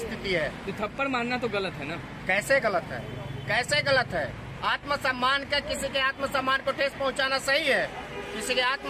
है। तो थप्पड़ मारना तो गलत है ना? कैसे गलत है? कैसे गलत है? आत्मसम्मान का, किसी के आत्मसम्मान को ठेस पहुंचाना सही है? किसी के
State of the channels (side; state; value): both; identical; correlation 1.00